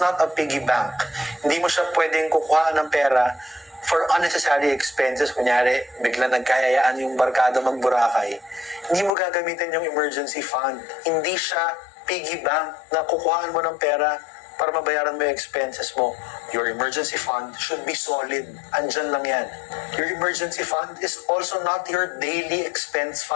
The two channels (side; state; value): right; drops out; at 9.1 s